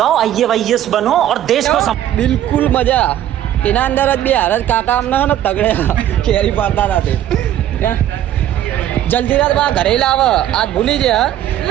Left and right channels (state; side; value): quieter; left; 11.9 dB